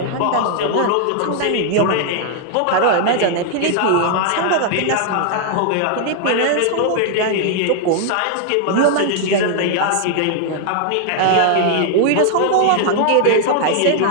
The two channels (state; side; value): different; both; correlation 0.00